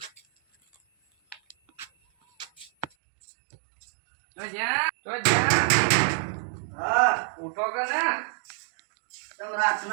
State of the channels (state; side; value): drops out; left; at 2.9 s